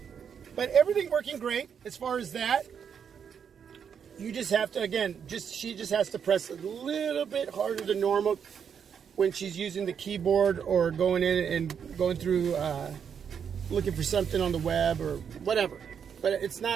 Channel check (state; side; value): quieter; left; 7.4 dB